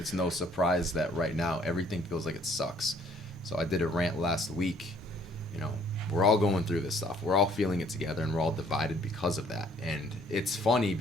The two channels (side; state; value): both; normal; correlation 0.61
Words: no surprise that right now everything feels like it sucks. So I did a rant last week. You know, we're all going through this stuff. We're all feeling it together, and we're all divided because of that. And it's funny